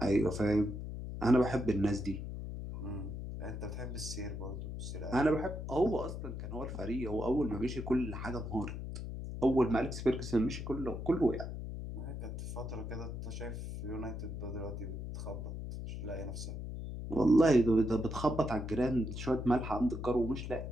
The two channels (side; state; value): left; noise; hum, 6 dB below the sound